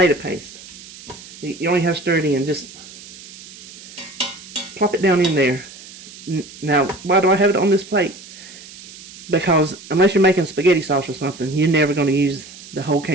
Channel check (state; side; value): noise; right; hiss, 18 dB below the sound